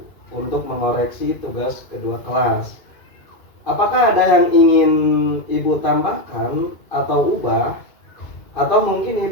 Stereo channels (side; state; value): right; late; 2.4 ms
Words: untuk mengoreksi tugas kedua kelas. Apakah ada yang ingin Ibu tambahkan atau ubah? Atau mungkin